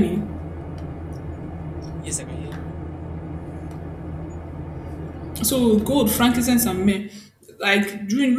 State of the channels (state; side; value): identical; both; correlation 1.00